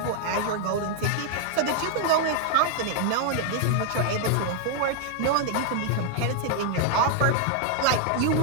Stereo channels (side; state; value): both; different; correlation 0.00